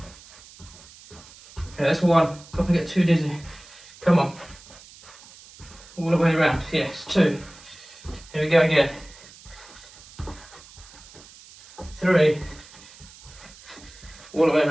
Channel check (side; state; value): right; noise; hiss, 21 dB below the sound